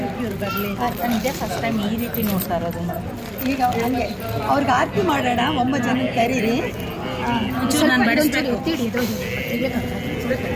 ಇವ್ರು ಬರಲಿ ನಿಜ ಫಸ್ಟ್ ಟೈಮ್ ಈ ರೀತಿ ನೋಡ್ತಾ ಇರೋದು. ಈಗ ಹಂಗೆ ಅವ್ರಿಗೆ ಆರತಿ ಮಾಡೋಣ. 9 ಜನ ಕರೀರಿ.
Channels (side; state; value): both; identical; correlation 1.00